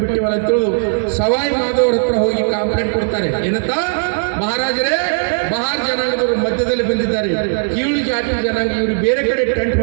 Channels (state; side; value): silent; left; 62 dB below the other